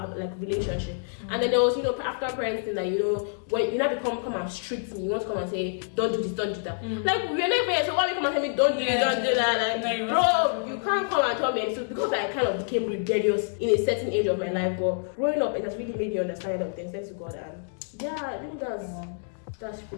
like relationship. And then there was, you know, after parenting that, you know, when you now come and strict me, you want to come and say, don't do this, don't do that. Like we're never here, so why you come and tell me don't do this, don't do that? Like, bro, you can't come and tell me. So because I kind of became rebellious in a certain age of my life, but growing up, it has really made me understand a lot of things. Thanks to God, and I think that's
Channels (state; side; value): silent; right; digital silence